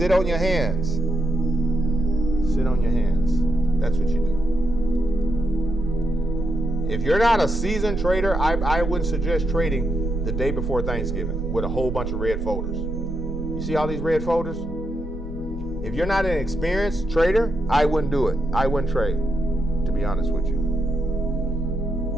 on your hands. Sit on your hands. That's what you do. If you're not a seasoned trader, I wouldn't suggest trading the day before Thanksgiving with a whole bunch of red folders. You see all these red folders? If you're not an experienced trader, I wouldn't do it. I wouldn't trade, to be honest with you.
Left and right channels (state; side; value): noise; left; hum, 23 dB below the sound